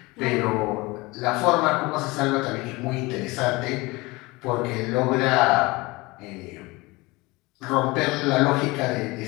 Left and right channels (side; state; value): right; quieter; 23.0 dB